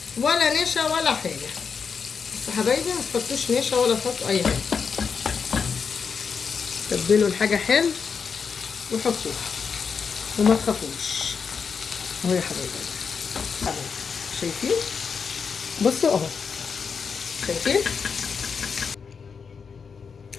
ولا نشا ولا حاجه. بس حبايبي ما تحطوش نشا ولا تحطوا اي حاجه. تبلوا الحاجه حلو وحطوها وما تخافوش اهو يا حبايبي. شايفين؟ بصوا اهو شايفين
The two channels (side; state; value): right; quieter; 5.9 dB